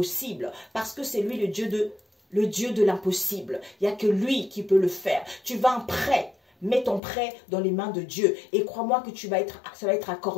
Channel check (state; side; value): drops out; right; at 7.0 s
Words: parce que c'est lui le Dieu de l'impossible. Il n'y a que lui qui peut le faire. Tu vas en prêt. Mets ton prêt dans les mains de Dieu et crois-moi que ça va être